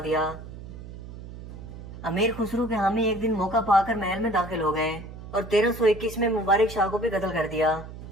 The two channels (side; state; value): right; noise; hum, 13 dB below the sound